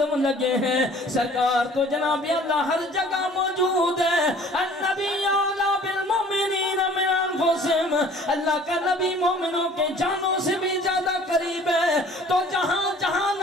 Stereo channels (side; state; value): both; normal; correlation 0.51